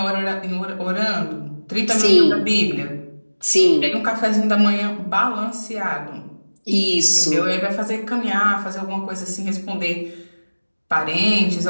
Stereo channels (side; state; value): both; inverted; correlation -1.00